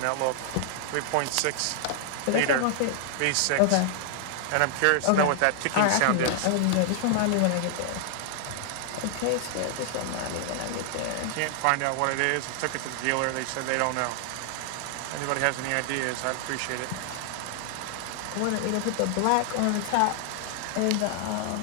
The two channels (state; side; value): different; both; correlation 0.00